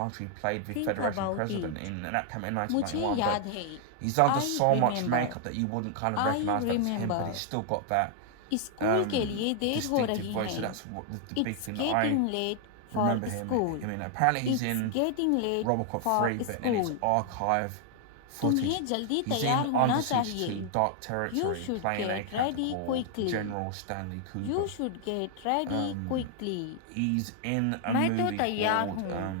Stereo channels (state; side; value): different; both; correlation 0.00